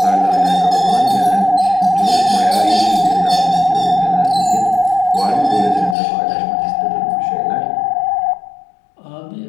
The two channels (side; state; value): right; drops out; at 6.0 s